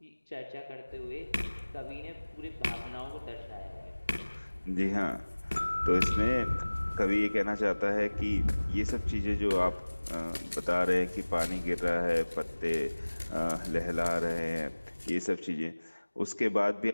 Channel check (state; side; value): inverted; both; correlation -1.00